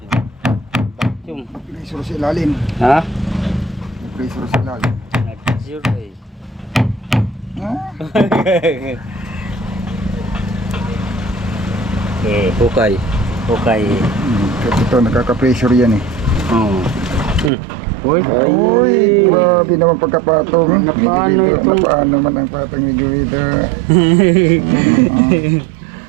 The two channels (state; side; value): drops out; left; at 17.5 s